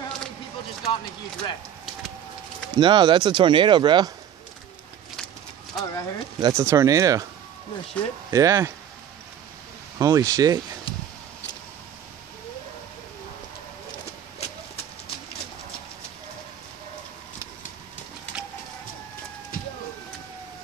how many people just got in a huge wreck. No, that's a tornado, bro. Oh, right here? That's a tornado. No shit. Yeah. Holy shit.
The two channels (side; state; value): left; quieter; 9.6 dB